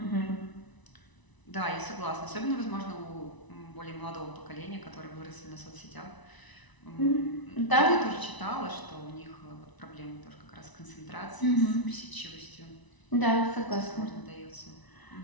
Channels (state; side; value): late; right; 1.0 ms